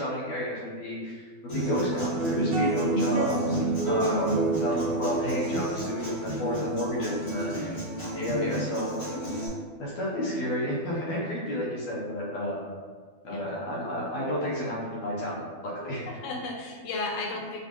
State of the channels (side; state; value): right; late; 12 ms